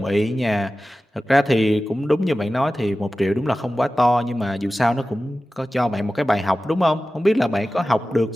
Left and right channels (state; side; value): normal; both; correlation 0.95